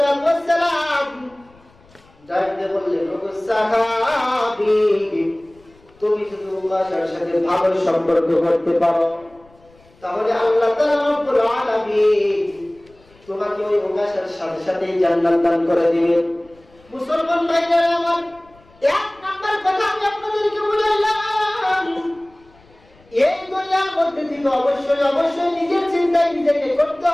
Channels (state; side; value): noise; left; rumble, 29 dB below the sound